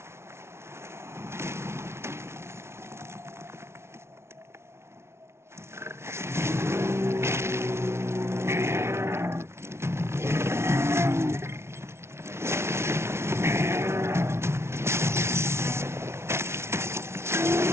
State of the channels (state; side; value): late; left; 0.13 ms